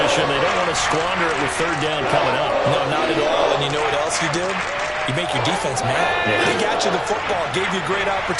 They don't want to squander it with 3rd down coming up. No, not at all. And you know what else you did? You make your defense mad. Yeah. They got you the football, gave you a great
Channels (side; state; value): both; identical; correlation 1.00